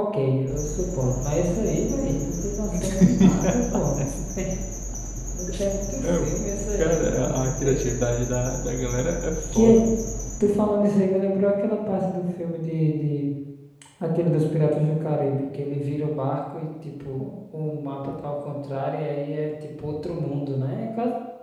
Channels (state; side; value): identical; both; correlation 1.00